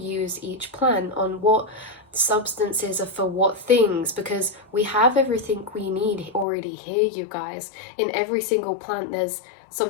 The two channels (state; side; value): drops out; right; at 6.5 s